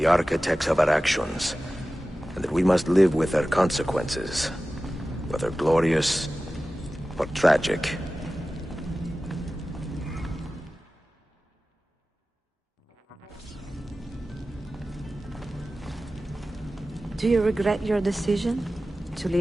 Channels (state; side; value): normal; both; correlation 0.95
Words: architects of our actions, and that we must live with their consequences, whether glorious or tragic. Do you regret your decision to